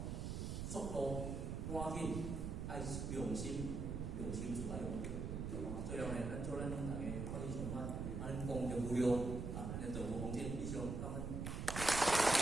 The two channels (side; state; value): right; noise; rumble, 3 dB below the sound